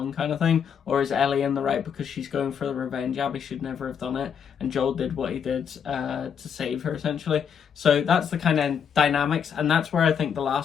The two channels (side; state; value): right; quieter; 7.5 dB